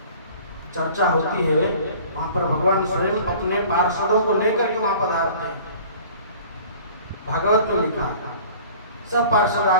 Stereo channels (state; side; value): inverted; both; correlation -0.47